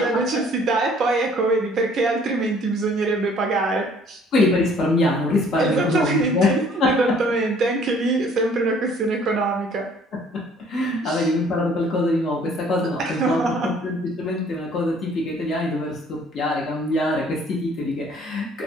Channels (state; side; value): normal; both; correlation 0.57